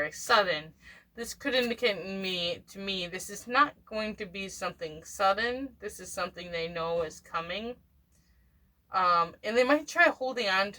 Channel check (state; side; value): identical; both; correlation 1.00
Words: sudden. This could indicate to me, this is not going to be something sudden. This is something they know is coming. And they might try holding on